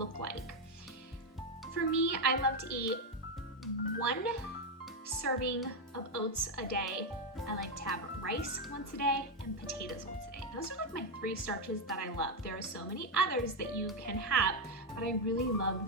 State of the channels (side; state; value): both; normal; correlation 0.04